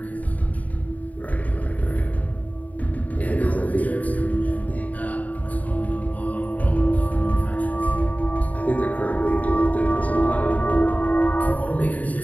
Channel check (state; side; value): late; right; 0.072 ms